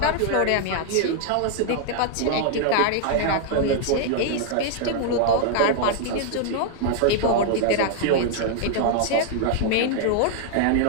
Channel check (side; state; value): both; different; correlation 0.00